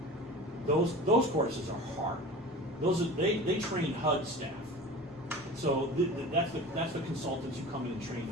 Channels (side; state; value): both; normal; correlation 0.36